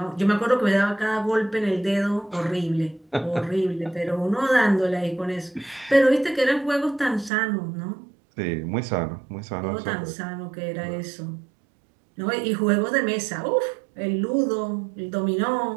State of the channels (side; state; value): left; drops out; at 7.3 s